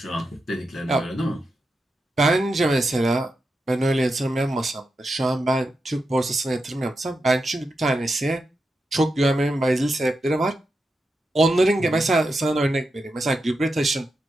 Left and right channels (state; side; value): normal; both; correlation 0.88